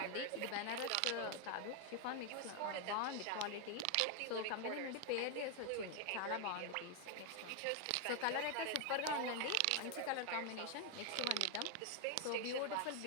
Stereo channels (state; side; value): different; both; correlation 0.00